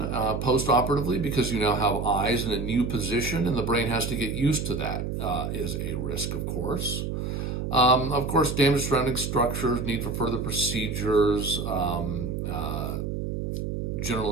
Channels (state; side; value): noise; right; hum, 3 dB below the sound